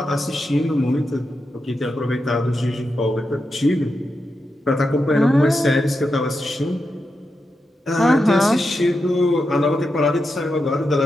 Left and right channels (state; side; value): normal; both; correlation 0.87